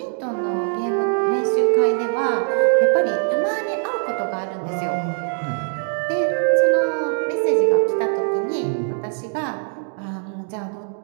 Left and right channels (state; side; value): silent; left; 57 dB below the other